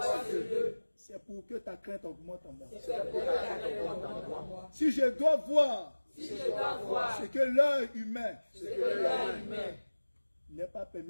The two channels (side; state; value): both; inverted; correlation -1.00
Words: ce lieu, c'est pour que ta crainte augmente en moi. c'est pour que ta crainte augmente en moi. Si je dois voir Si je dois voir ce que l'œil humain ce que l'œil humain n'est pas